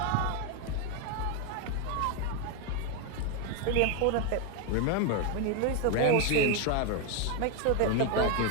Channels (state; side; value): different; both; correlation 0.01